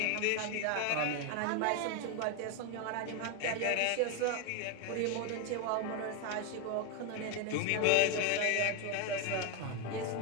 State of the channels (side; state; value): both; different; correlation 0.01